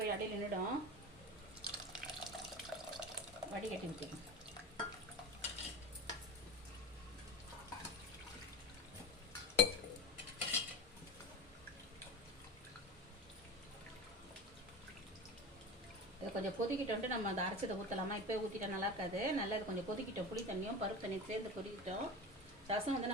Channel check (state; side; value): normal; both; correlation 0.29